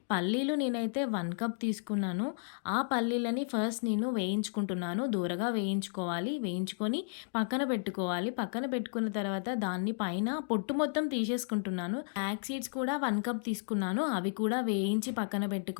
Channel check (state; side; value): silent; right; digital silence